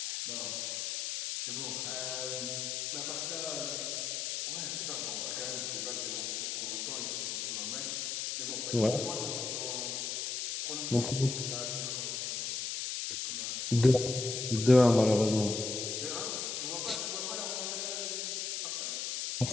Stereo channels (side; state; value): left; noise; hiss, 2 dB below the sound